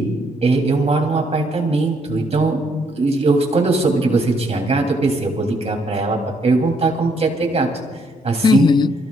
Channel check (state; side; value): normal; both; correlation 0.71